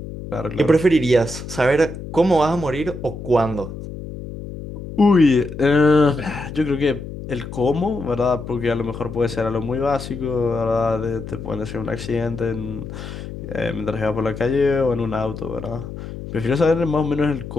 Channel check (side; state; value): left; noise; hum, 10 dB below the sound